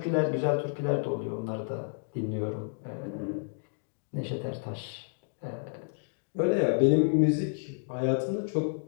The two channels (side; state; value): right; silent; digital silence